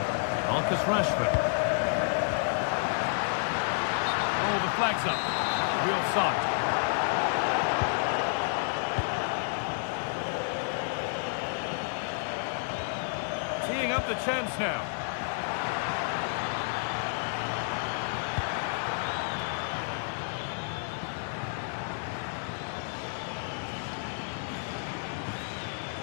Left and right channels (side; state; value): right; silent; digital silence